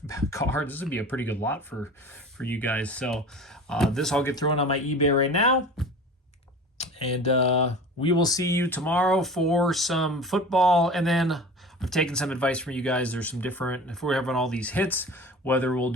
cards. This would be a pretty good lot for you guys. So this I'll get thrown on my eBay right now. And we will see you tomorrow for some football. And then I've taken some advice from you guys. There's some different, if we're having all these hits, whether we'll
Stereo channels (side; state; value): both; normal; correlation 0.38